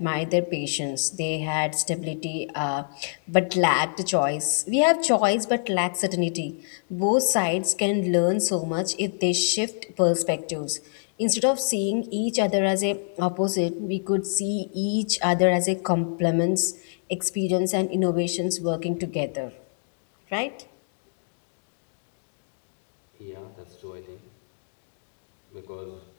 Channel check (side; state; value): right; silent; digital silence